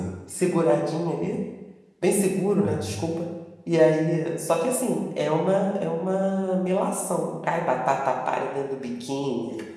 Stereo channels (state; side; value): identical; both; correlation 1.00